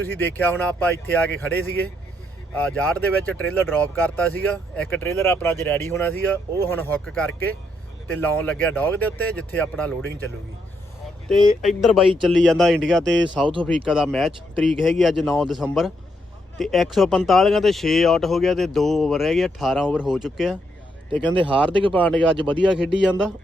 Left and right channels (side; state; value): both; normal; correlation 0.77